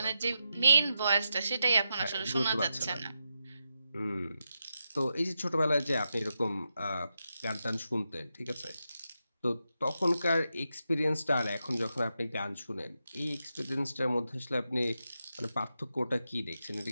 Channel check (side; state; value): both; inverted; correlation -0.87